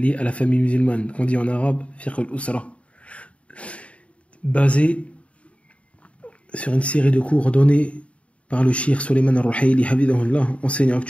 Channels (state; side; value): late; right; 0.063 ms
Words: à la famille musulmane, qu'on dit en arabe fiqh al-usra, basée sur une série de cours donnés par le cheikh Sulayman al-Ruhaili Hafidhahullah, enseignant